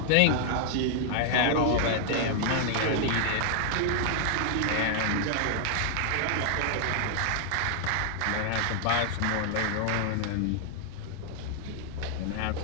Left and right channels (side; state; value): both; different; correlation 0.00